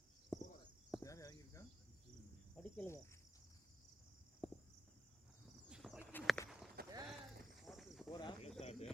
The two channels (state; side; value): normal; both; correlation 0.89